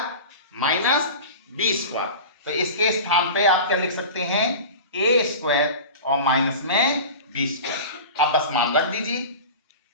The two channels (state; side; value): inverted; both; correlation -0.33